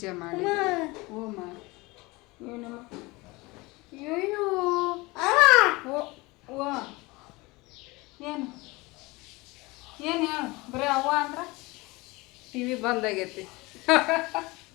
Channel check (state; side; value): quieter; right; 23.3 dB